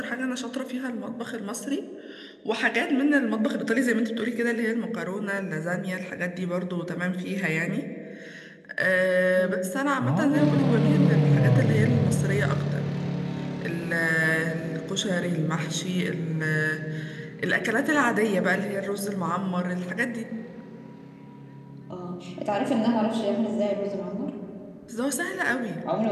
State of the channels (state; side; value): identical; both; correlation 1.00